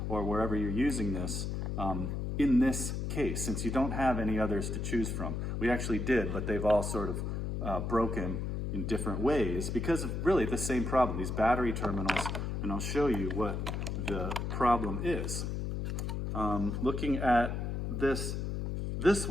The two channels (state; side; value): noise; left; hum, 2 dB below the sound